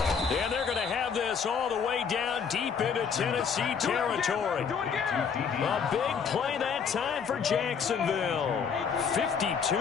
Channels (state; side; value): quieter; right; 6.4 dB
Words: they're going to have this all the way down deep into Tennessee territory. A big play that time for Jacksonville. 52